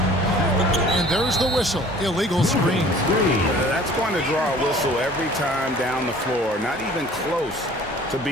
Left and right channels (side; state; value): both; normal; correlation 0.50